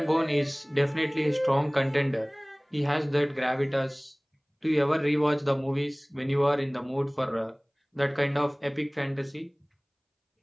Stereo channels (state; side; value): identical; both; correlation 1.00